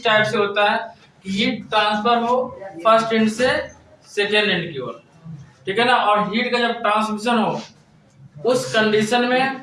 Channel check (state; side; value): identical; both; correlation 1.00